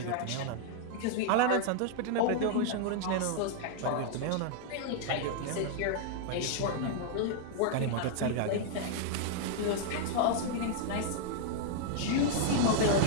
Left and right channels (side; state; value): both; different; correlation -0.01